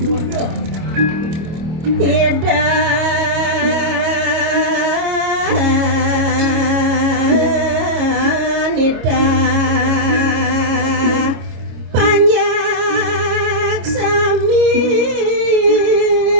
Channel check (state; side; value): late; left; 25 ms